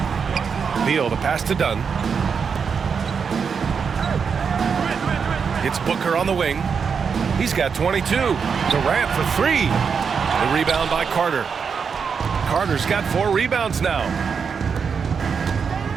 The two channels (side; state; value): left; quieter; 6.1 dB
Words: Beal, the pass to Dunn. It's Booker on the wing. He's got 22. Durant for 3. The rebound by Carter. Carter's got 4 rebounds now.